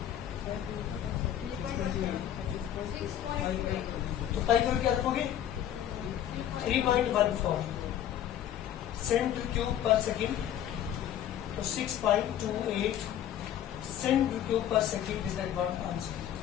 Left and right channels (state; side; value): quieter; right; 10.9 dB